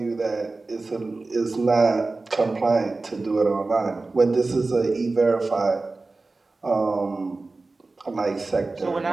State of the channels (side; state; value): left; quieter; 3.5 dB